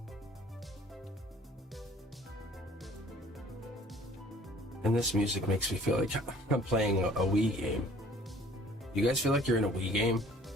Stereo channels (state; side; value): normal; both; correlation 0.54